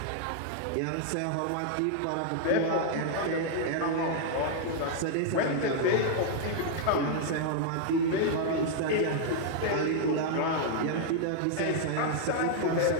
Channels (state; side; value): different; both; correlation -0.01